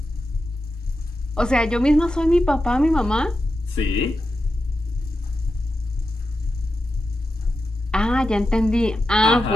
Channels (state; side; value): normal; both; correlation 0.90